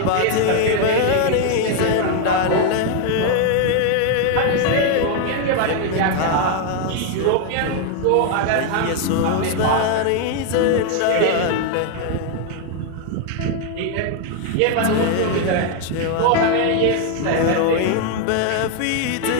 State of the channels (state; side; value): different; both; correlation 0.00